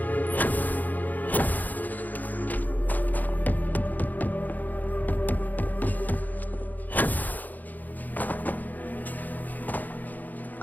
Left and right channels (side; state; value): right; late; 0.083 ms